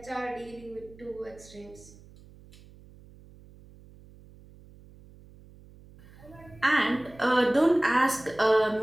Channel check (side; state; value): right; noise; hum, 23 dB below the sound